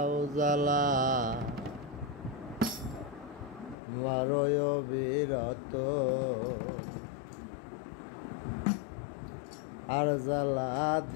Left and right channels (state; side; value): drops out; right; at 3.8 s